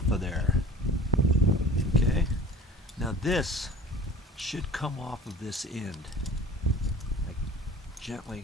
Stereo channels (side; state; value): both; normal; correlation 0.43